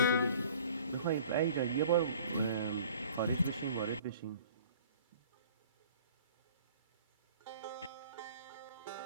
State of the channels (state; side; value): inverted; both; correlation -0.50